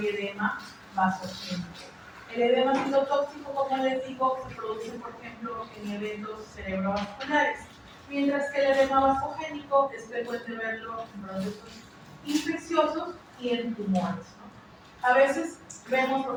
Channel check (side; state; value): both; identical; correlation 1.00